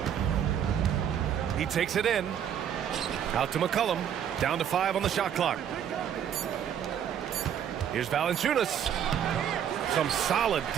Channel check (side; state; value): left; quieter; 9.1 dB